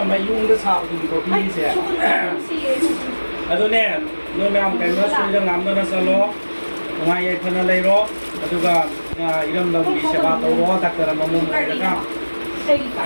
mayung da sa du ko pi se ado ne no nam ka no su da ngam na sa lo ngai ye khana lai ro adu ga iram da bi se ba to ro ta ka ma mum ka ka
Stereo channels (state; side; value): inverted; both; correlation -1.00